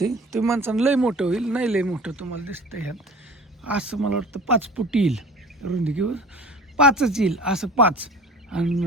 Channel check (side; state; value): both; normal; correlation 0.42